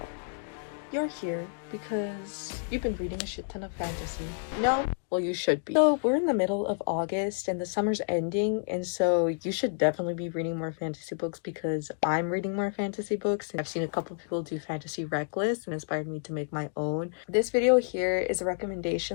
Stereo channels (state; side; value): silent; right; digital silence